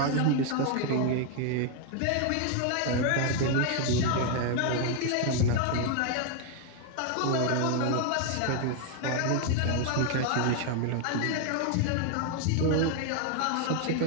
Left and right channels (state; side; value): different; both; correlation 0.00